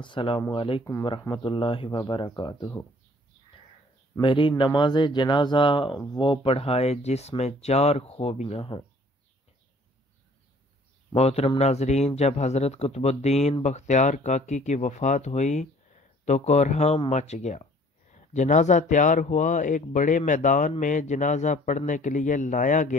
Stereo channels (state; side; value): normal; both; correlation 0.54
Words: علیکم ورحمۃ اللہ وبرکاتہ۔ میری نماز جنازہ وہ پڑھائے جس میں 4 خوبیاں ہوں۔ محترم ناظرین، جب حضرت قطب الدین بختیار کاکی کی وفات ہوئی تو کوہرام مچ گیا۔ جنازہ تیار ہوا، ایک بڑے میدان میں جنازہ پڑھنے کے لیے لایا